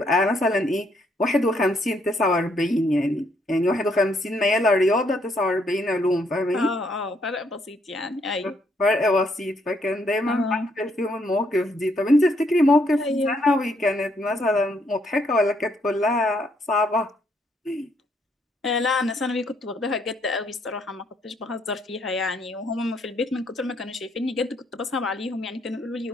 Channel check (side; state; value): both; normal; correlation 0.72